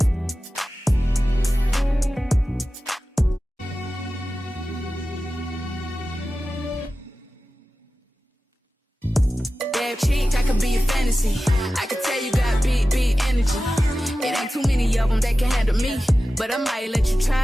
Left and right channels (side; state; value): both; normal; correlation 0.94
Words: Cheek, I could be a fantasy. I could tell you got big energy. It ain't too many of them that can handle me, but I might let you